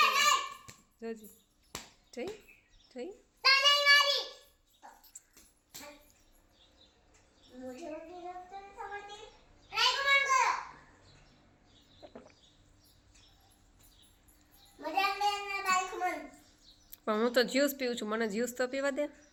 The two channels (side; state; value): both; identical; correlation 1.00